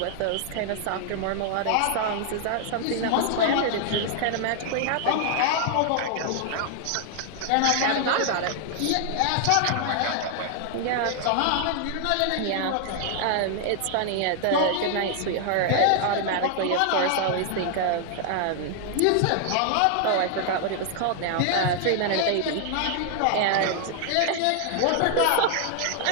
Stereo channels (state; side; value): different; both; correlation 0.00